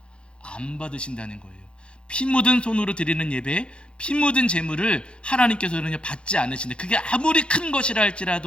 안 받으신다는 거예요. 피 묻은 손으로 드리는 예배, 피 묻은 제물을 하나님께서는 받지 않으신다. 그게 아무리 큰 것이라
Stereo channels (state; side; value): late; right; 0.056 ms